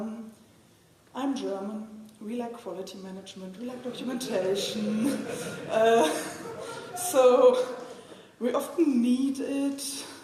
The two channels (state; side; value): identical; both; correlation 1.00